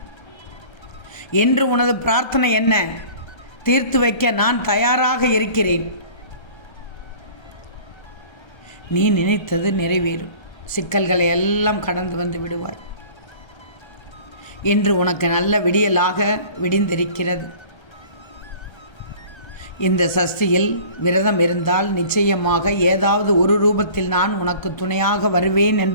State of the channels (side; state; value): right; late; 1.3 ms